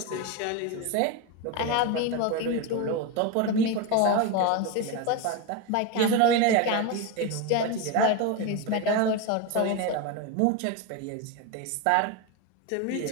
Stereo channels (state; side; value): different; both; correlation 0.04